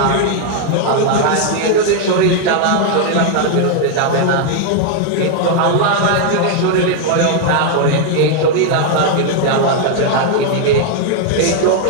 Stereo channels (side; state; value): both; different; correlation 0.00